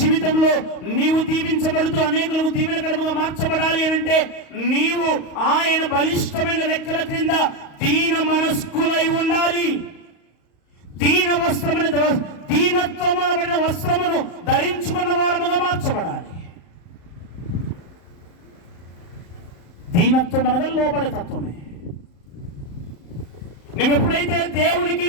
నీవు దీవించబడుతూ అనేకులకు దీవెనకరముగా మార్చబడాలి అని అంటే నీవు ఆయన బలిష్టమైన రెక్కల క్రింద దీన మనస్కులై ఉండాలి. దీనత్వం అనబడిన వస్త్రమును ధరించుకున్న వారముగా మార్చబడాలి. దీనత్వం అనగా లోబడే తత్వమే. నువ్వు ఎప్పుడైతే దేవునికి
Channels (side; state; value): right; late; 35 ms